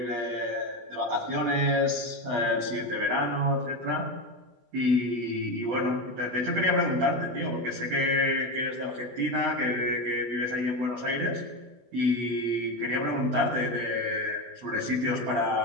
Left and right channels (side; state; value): left; late; 16 ms